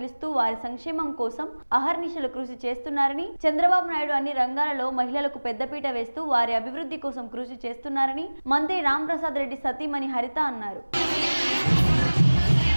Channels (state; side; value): inverted; both; correlation -1.00